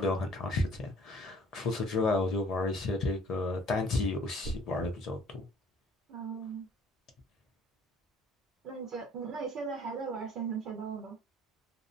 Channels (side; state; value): both; normal; correlation 0.55